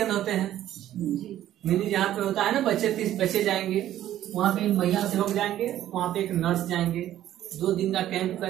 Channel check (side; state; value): left; quieter; 12.5 dB